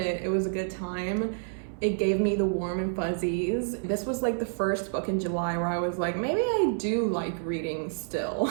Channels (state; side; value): silent; left; 59 dB below the other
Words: It was a good time. It gave me the warm and fuzzies. This was like the first book in July where I was like, maybe I do like reading still.